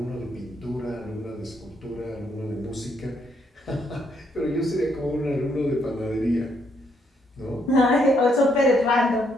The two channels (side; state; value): both; normal; correlation 0.73